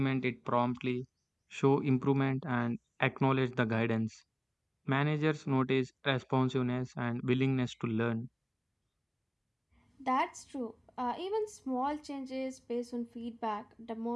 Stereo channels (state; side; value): identical; both; correlation 1.00